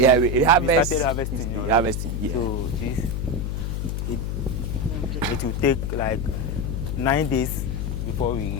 harvest. Started harvesting. Harvesting, yeah. So it will take like 9 days before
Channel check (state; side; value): noise; left; hum, 2 dB below the sound